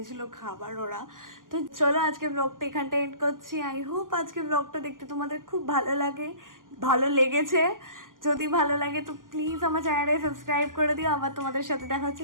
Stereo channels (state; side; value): late; left; 0.90 ms